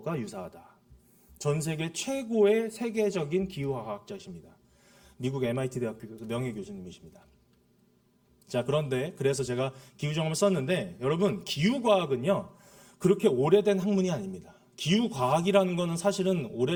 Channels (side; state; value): both; identical; correlation 1.00